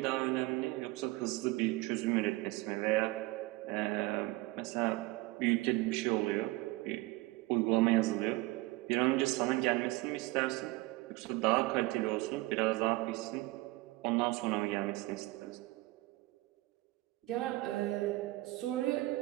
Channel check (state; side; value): quieter; left; 20.7 dB